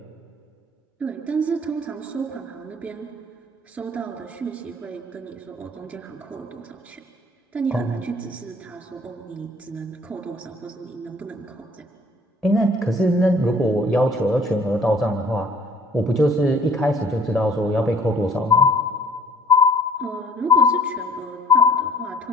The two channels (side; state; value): both; normal; correlation 0.53